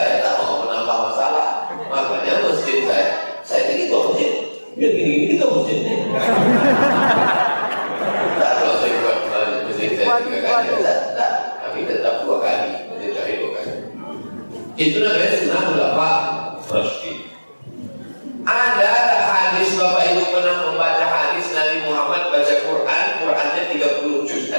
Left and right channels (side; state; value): both; inverted; correlation -1.00